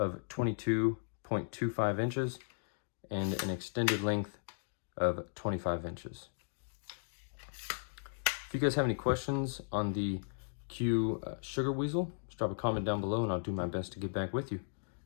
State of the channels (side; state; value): right; silent; digital silence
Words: 22.25 inches and an extended length of 25 inches. If you guys have any questions on the Q Sugar Weasel, just drop a comment down below and I'll do my best to get back with you.